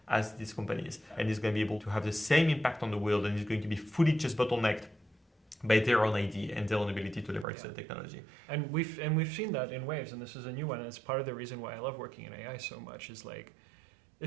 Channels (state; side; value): drops out; left; at 7.5 s